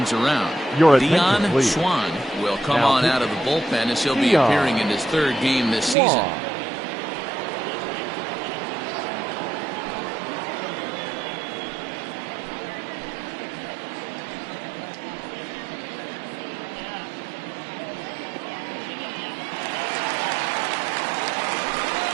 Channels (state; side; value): drops out; left; at 6.0 s